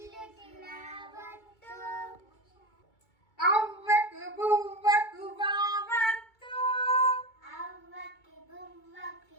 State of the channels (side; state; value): right; late; 2.3 ms